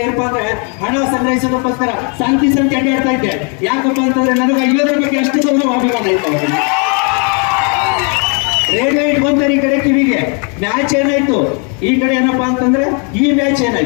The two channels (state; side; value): quieter; right; 37.1 dB